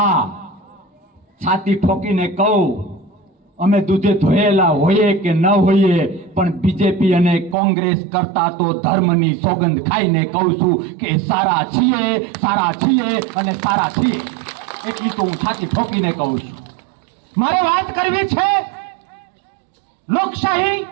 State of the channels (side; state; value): left; drops out; at 7.6 s